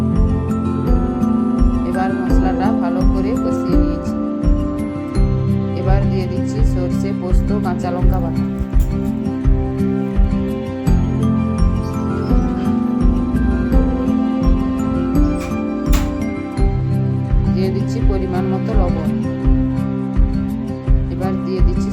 এবার মশলাটা ভালো করে কষিয়ে নিয়েছি। এবার দিয়ে দিচ্ছি সর্ষে পোস্ত কাঁচা লঙ্কা বাটা, দিয়ে দিচ্ছি পরিমাণ মতো লবণ। এবার দিয়ে দিচ্ছি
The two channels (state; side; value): identical; both; correlation 1.00